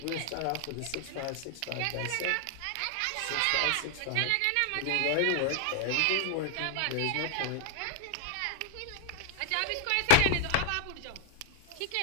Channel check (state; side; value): different; both; correlation 0.00